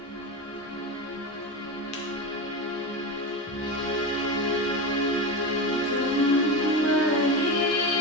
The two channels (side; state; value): both; normal; correlation 0.20